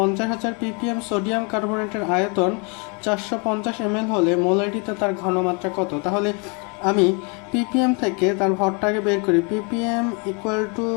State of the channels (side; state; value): right; quieter; 33.9 dB